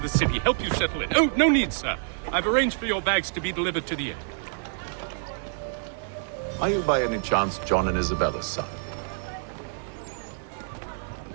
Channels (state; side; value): silent; left; digital silence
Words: city, help you settle in. Oh, no need, sir. I've arranged for your bags to be delivered to the inn. Are you by any chance John and Isabella's son?